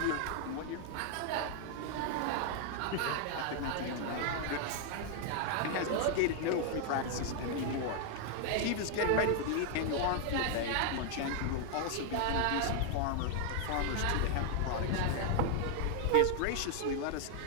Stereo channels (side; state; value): both; different; correlation 0.00